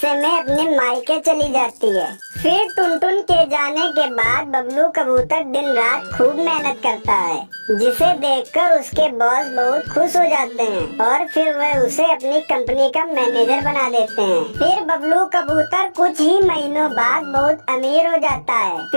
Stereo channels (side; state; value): both; inverted; correlation -1.00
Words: में अपने मायके चली जाती है। फिर टुनटुन के जाने के बाद बबलू कबूतर दिन रात खूब मेहनत करता है, जिसे देखकर उसके बॉस बहुत खुश हो जाते हैं और फिर वह उसे अपनी कंपनी का मैनेजर बना देते हैं। फिर बबलू कबूतर कुछ ही महीनों बाद बहुत अमीर हो जाता है।